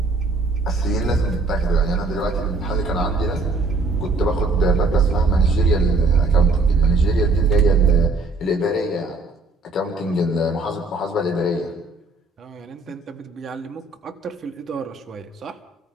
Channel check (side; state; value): left; quieter; 3.3 dB